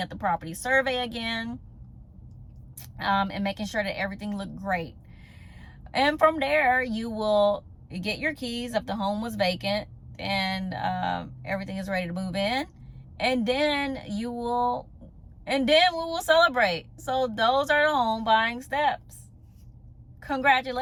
at the property survey again, and making sure that everything looked great. And from there, you will get your keys if the home was vacant and everything is ready to move in. And then we will celebrate. So those are the home buying steps.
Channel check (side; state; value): both; identical; correlation 1.00